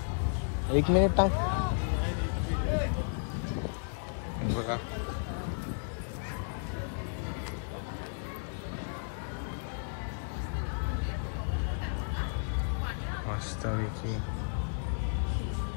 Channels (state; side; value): silent; right; digital silence